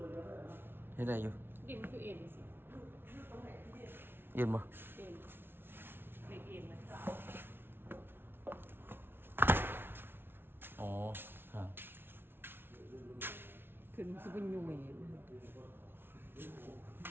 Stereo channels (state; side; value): late; left; 0.11 ms